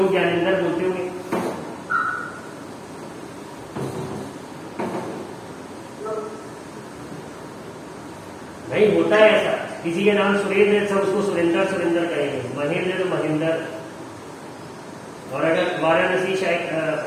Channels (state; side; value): identical; both; correlation 1.00